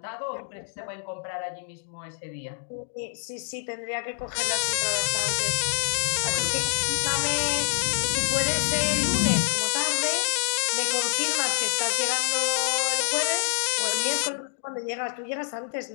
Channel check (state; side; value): silent; right; digital silence